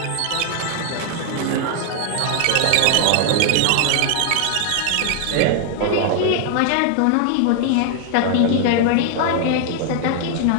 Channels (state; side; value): different; both; correlation 0.00